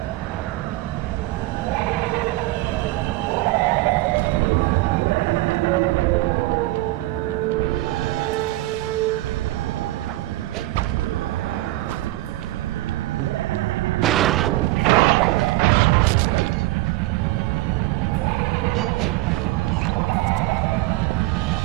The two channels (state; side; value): quieter; left; 18.5 dB